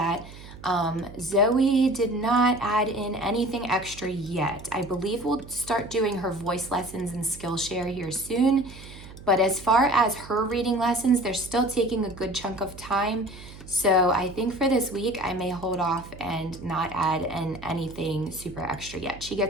Zoe did not add in anything extra yet. I believe we'll start doing her voice lessons and Skillshare here soon. But as far as her reading lessons, they're still taking a good chunk of time. So I think for this week, I may hold off and not add in anything super extra yet. She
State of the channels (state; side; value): noise; right; hum, 16 dB below the sound